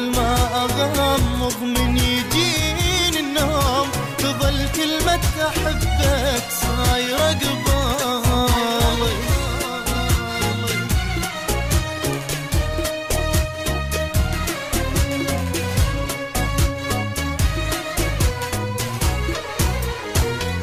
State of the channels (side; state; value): both; identical; correlation 1.00